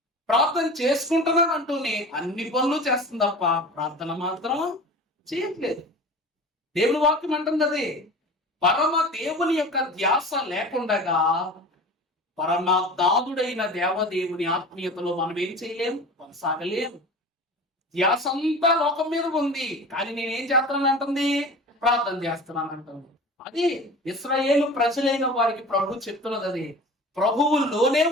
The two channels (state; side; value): normal; both; correlation 0.37